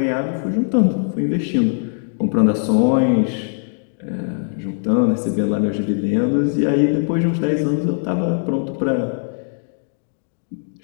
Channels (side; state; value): right; silent; digital silence